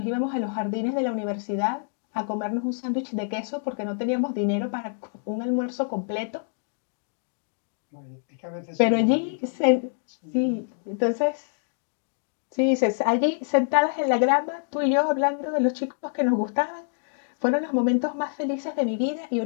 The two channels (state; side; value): silent; right; digital silence